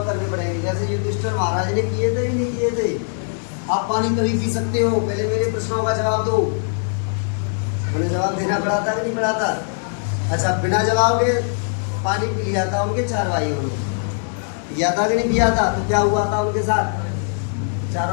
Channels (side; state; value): right; silent; digital silence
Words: करने पड़ेंगे, जैसे युधिष्ठिर महाराज ने किए थे कि नहीं किए थे। आप पानी तभी पी सकते हो, पहले मेरे प्रश्नों का जवाब दो। उन्हें जवाब देना पड़ा था कि नहीं पड़ा था? अच्छा, बिना जवाब के पानी पी लिया था उनके 4 भाइयों ने, पिया था कि नहीं पिया था? तो क्या हुआ था उनके साथ?